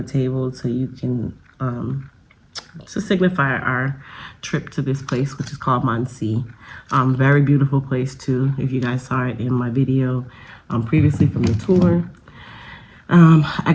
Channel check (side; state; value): both; identical; correlation 1.00